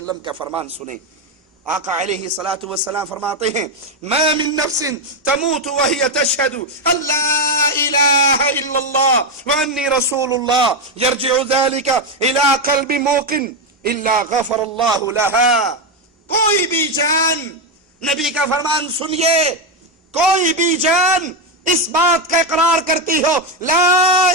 کا فرمان سنیں. آقا علیہ الصلوۃ والسلام فرماتے ہیں ما من نفس تموت وهي تشهد ان لا اله الا الله واني رسول الله يرجع ذلك الى قلب موقن الا غفر الله لها. کوئی بھی جان، نبی کا فرمان سنیے، کوئی بھی جان اس بات کا اقرار کرتی ہو لا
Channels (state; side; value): normal; both; correlation 0.07